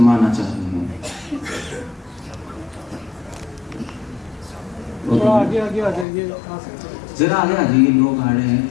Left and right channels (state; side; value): drops out; right; at 6.1 s